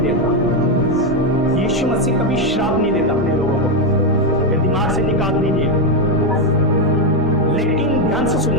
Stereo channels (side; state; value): both; normal; correlation 0.06